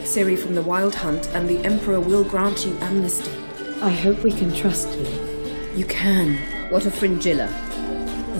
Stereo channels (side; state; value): both; inverted; correlation -1.00